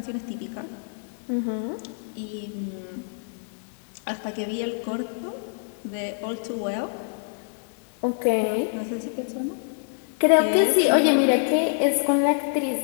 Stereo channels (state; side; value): silent; right; digital silence